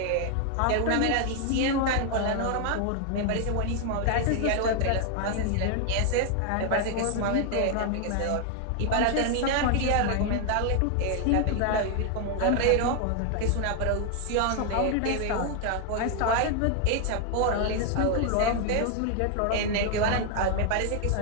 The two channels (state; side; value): different; both; correlation 0.00